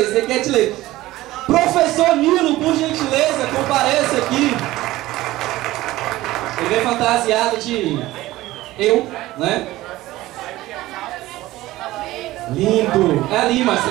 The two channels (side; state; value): left; quieter; 17.1 dB